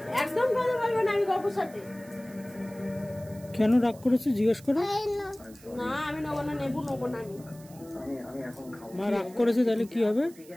একদম কথা বলবো না আমি গপুর সাথে। কেন রাগ করেছে জিজ্ঞেস করো। না আমি নেবো না, নেবো না আমি। মা রাগ করেছে তাহলে কি হবে?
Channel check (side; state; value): right; noise; hiss, 23 dB below the sound